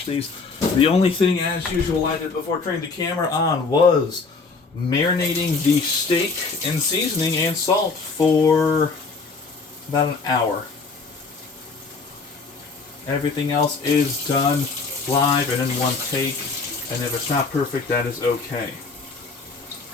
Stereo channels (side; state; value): right; quieter; 4.3 dB